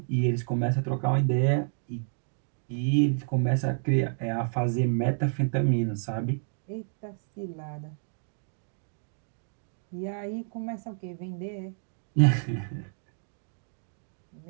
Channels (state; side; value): silent; left; digital silence